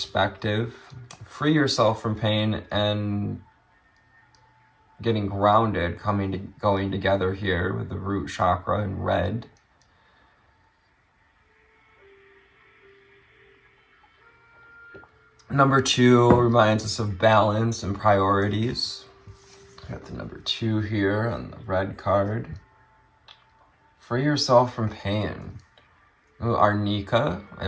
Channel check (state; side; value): identical; both; correlation 1.00